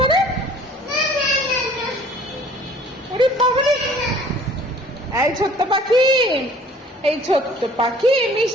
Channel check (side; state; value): both; normal; correlation 0.52